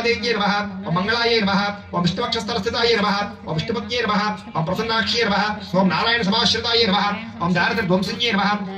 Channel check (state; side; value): identical; both; correlation 1.00